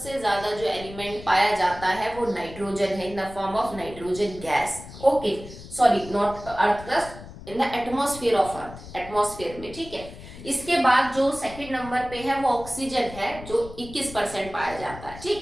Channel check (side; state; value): left; noise; rumble, 15 dB below the sound